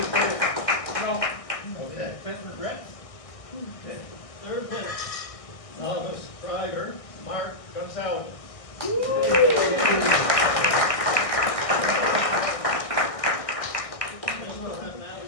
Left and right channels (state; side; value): late; right; 1.6 ms